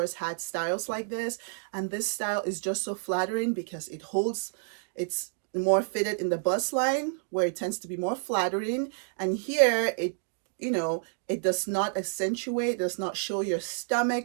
had styles like this. And this style is just so flattering because it's more fitted in the bust line where it tends to be more flattering. And here it, you know, it does not accentuate, does not show your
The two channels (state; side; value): silent; left; digital silence